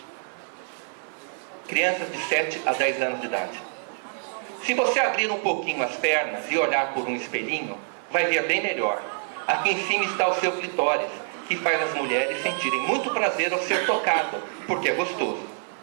Crianças de 7 a 10 anos de idade. Se você abrir um pouquinho as pernas e olhar por um espelhinho, vai ver bem melhor. Aqui em cima está o seu clitóris, que faz as mulheres sentirem muito prazer ao ser tocado, porque é gostoso.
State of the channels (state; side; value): silent; left; 58 dB below the other